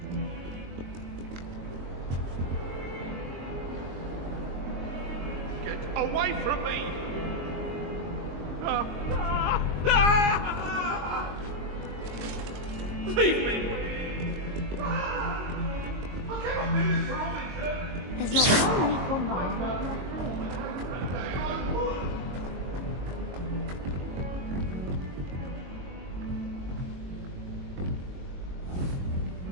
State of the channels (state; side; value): late; left; 22 ms